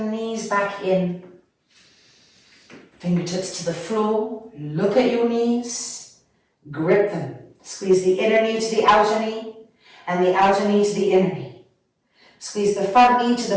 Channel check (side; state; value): both; identical; correlation 1.00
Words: knees back in. Fingertips to the floor, look at your knees, grip them. Squeeze the inner knee to the outer knee, and the outer knee to the inner knee. Squeeze the front knee to